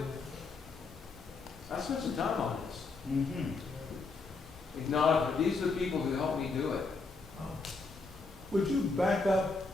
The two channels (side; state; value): right; quieter; 4.0 dB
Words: I spent some time on this. Acknowledge that these are the people who helped me do it. Would you back up